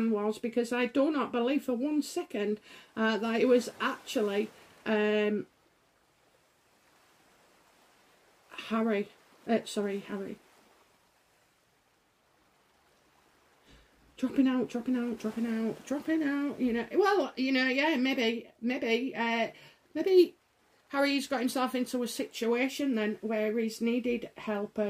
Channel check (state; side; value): identical; both; correlation 1.00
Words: was, because I do not believe for 1 second that it was actually Harry. Sorry, Harry. Dropping out, you know. Well, you know, yeah, maybe Harry's got himself into a situation then where he's needed help,